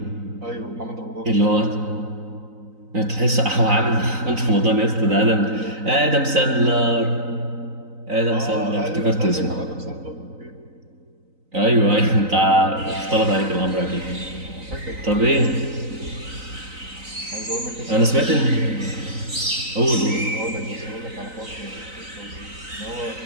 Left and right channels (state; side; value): late; left; 3.9 ms